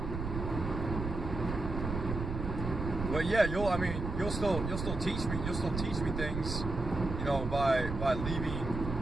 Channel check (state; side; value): noise; right; rumble, 5 dB below the sound